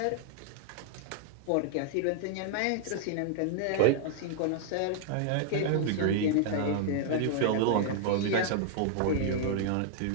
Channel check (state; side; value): different; both; correlation -0.01